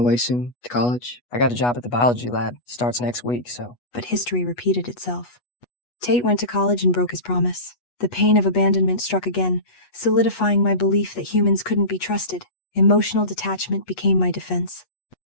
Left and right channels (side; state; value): right; late; 8.2 ms